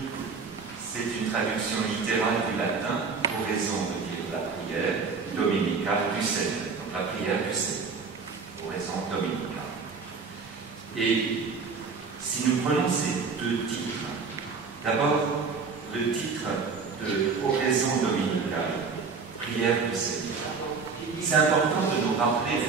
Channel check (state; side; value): quieter; left; 5.0 dB